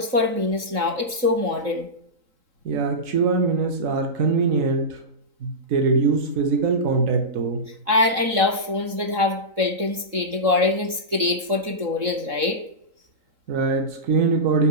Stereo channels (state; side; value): late; left; 3.7 ms